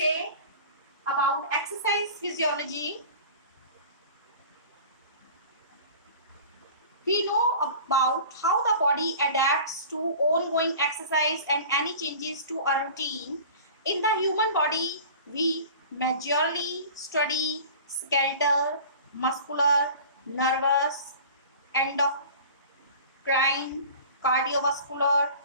about exercise physiology. We know about how the body adapts to ongoing exercise and any changes to a routine. In the human body, we majorly study skeletal, muscular, nervous, endocrine, cardiovascular,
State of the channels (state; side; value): inverted; both; correlation -0.41